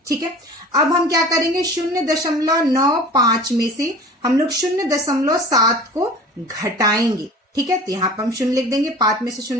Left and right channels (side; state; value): both; normal; correlation 0.41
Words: ठीक है, अब हम क्या करेंगे? 0.95 में से हम लोग 0.7 को घटाएंगे। ठीक है, तो यहाँ पर हम 0 लिख देंगे। 5 में से